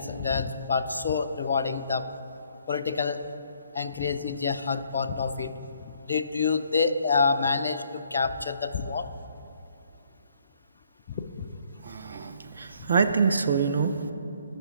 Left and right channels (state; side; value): inverted; both; correlation -0.66